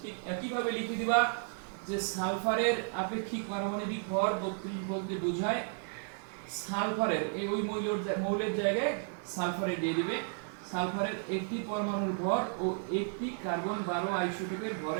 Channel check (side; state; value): left; silent; 55 dB below the other